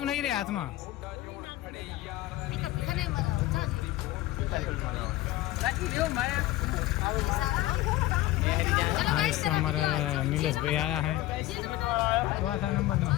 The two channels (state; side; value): quieter; right; 16.4 dB